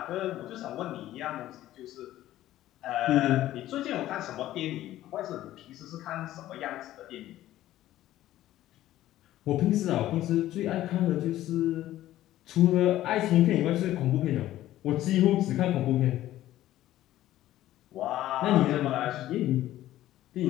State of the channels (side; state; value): right; quieter; 14.1 dB